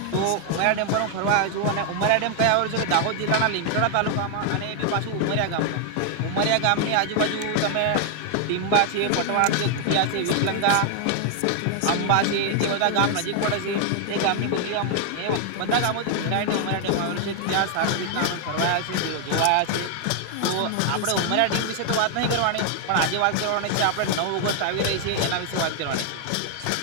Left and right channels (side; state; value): both; different; correlation 0.00